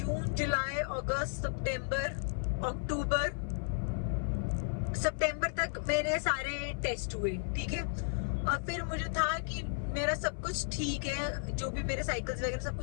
जुलाई, अगस्त, सितंबर, अक्टूबर, सितंबर तक मेरे सारे टेस्ट हुए, ठीक है। और फिर मुझे था कि मेरा सब कुछ ठीक है, जो भी मेरे साइकिल्स वगैरह सब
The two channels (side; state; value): right; silent; 55 dB below the other